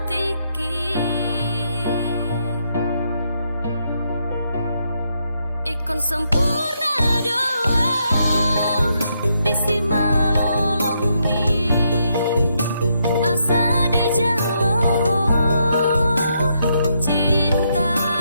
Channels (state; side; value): inverted; both; correlation -0.77